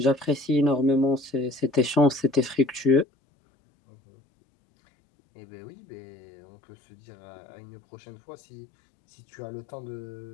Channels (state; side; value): drops out; right; at 3.1 s